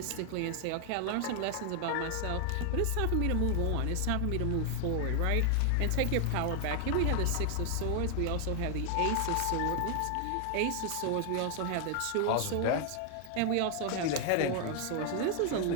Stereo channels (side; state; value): both; different; correlation 0.00